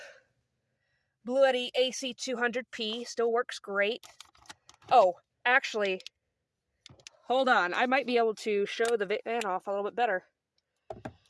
Bluetti AC200P still works great. Oh, actually, hold on. I might be able to show the van off a little bit better.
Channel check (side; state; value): both; identical; correlation 1.00